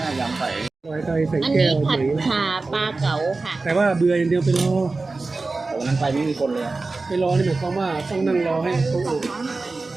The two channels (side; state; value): left; quieter; 3.6 dB